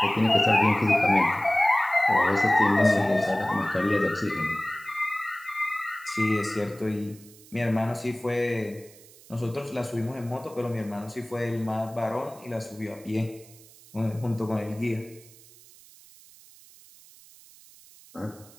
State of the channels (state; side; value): noise; right; hiss, 23 dB below the sound